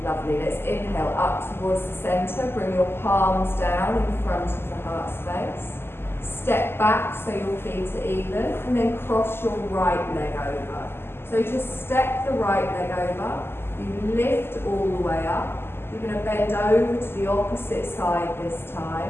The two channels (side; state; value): right; late; 0.11 ms